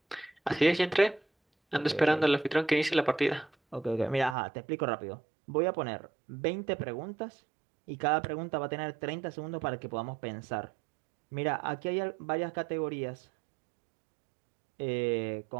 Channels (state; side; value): drops out; left; at 4.4 s